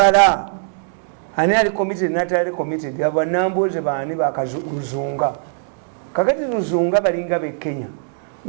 ani ali committed natali committed aba namboze baani bakazunga kakati luzunga balinga be Kenya.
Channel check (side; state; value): left; silent; digital silence